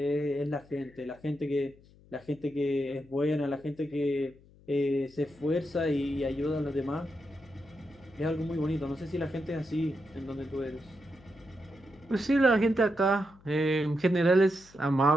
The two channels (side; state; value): left; noise; hum, 26 dB below the sound